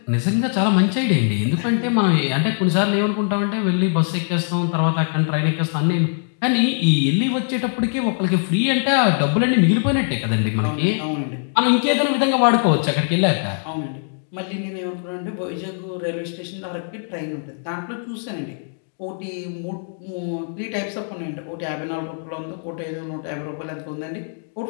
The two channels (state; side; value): silent; right; digital silence